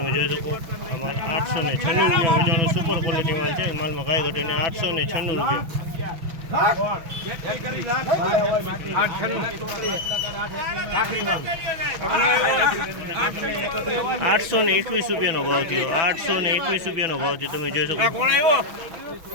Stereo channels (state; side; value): late; left; 6.1 ms